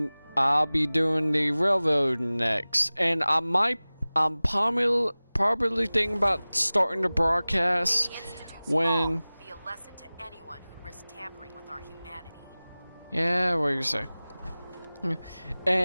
I'll be doing the railroad next. And I'm probably thinking about starting the broadcast when. Be a lesson to anyone who'd risk tampering with our humanity. Yeah, what do you say?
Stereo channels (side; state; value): both; inverted; correlation -0.99